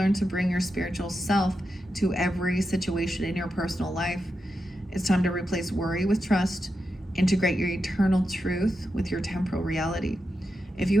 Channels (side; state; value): both; normal; correlation 0.88